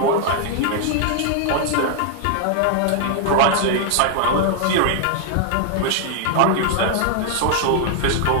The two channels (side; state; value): both; different; correlation 0.00